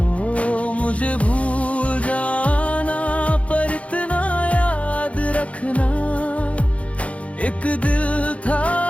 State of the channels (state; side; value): late; right; 0.064 ms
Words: मुझे भूल जाना पर इतना रखना। एक दिल